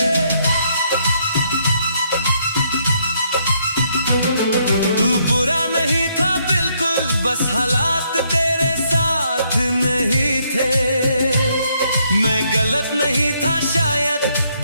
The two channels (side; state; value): both; inverted; correlation -0.72